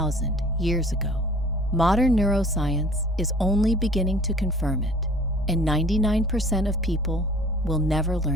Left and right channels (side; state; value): both; normal; correlation 0.50